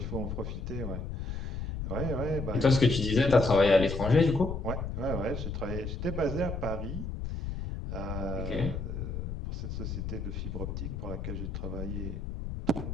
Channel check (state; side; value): noise; left; rumble, 5 dB below the sound